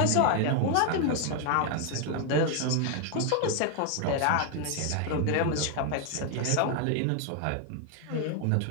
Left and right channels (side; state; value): both; different; correlation 0.01